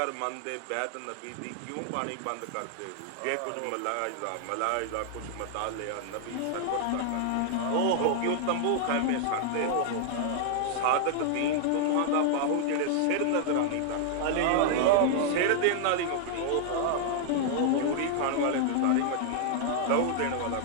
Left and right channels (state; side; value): different; both; correlation -0.01